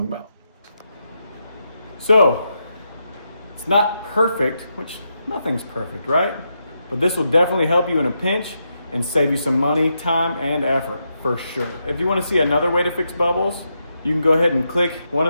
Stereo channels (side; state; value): both; inverted; correlation -0.83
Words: about. So, it's not perfect, which nothing's perfect, right? But this will definitely help you in a pinch and save you some money, time, and effort, for sure. If you want to see another way to fix bubbles, you can go ahead and click one